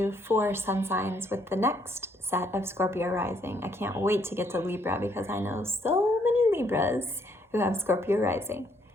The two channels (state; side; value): normal; both; correlation 0.69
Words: 4 sun signs with the next set of Scorpio rising. I can't wait to get to Libra because I know so many Libras who have Scorpio rising.